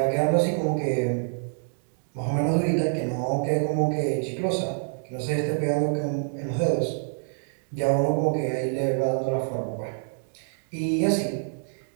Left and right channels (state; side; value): silent; left; digital silence